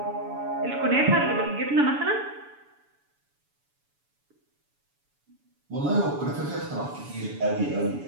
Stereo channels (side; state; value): left; late; 7.0 ms